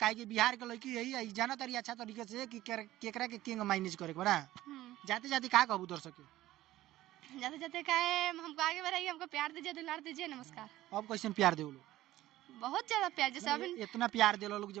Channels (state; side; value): quieter; left; 15.4 dB